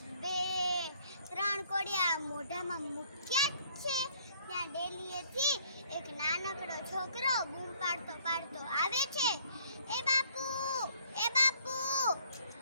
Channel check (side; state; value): both; inverted; correlation -0.61